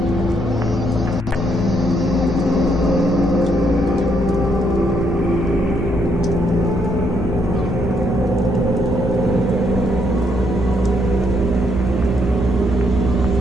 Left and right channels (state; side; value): normal; both; correlation 0.73